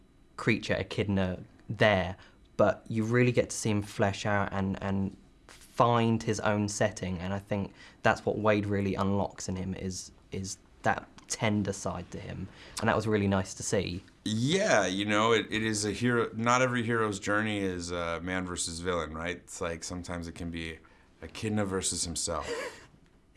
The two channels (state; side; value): identical; both; correlation 1.00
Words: creature, Echidna there. But you really get to see him flesh out and find his own setting, and I think that's what Wade really unlocks in him is that tender side to him, and that was really nice to see. Yeah, it is a hero. Not every hero's journey is man versus villain, right? It's like sometimes it can be Echidna versus himself.